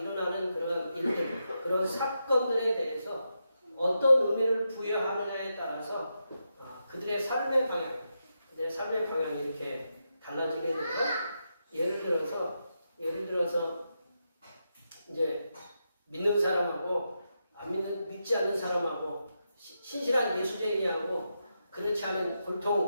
그런 일들, 그런 사건들에 대해서 어떤 의미를 부여하느냐에 따라서 그들의 삶의 방향이 이렇게 달라지게 되고 예를 들어서 이제 믿는 사람하고 믿지 않는 사람하고 신실한 예수쟁이하고 그렇지 않은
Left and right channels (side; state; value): both; inverted; correlation -0.86